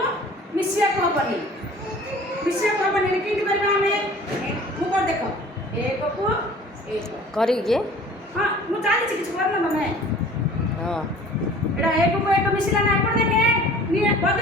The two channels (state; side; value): normal; both; correlation 0.47